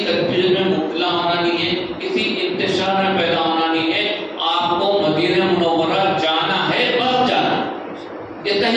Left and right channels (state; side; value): identical; both; correlation 1.00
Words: میں مبتلا ہونا نہیں ہے، کسی انتشار میں پیدا ہونا نہیں ہے۔ آپ کو مدینہ منورہ جانا ہے، بس جانا، یہ